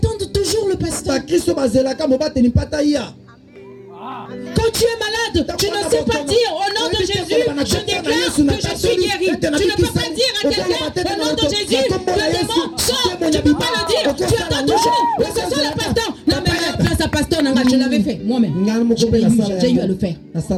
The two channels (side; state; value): both; identical; correlation 1.00